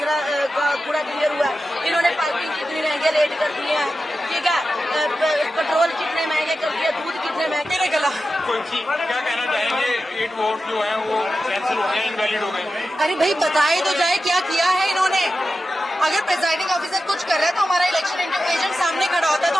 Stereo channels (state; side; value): normal; both; correlation 0.92